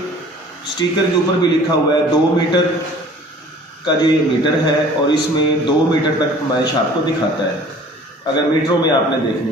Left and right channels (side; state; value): both; normal; correlation 0.49